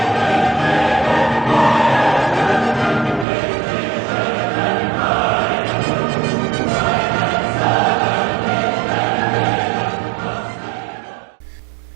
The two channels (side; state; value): left; drops out; at 3.2 s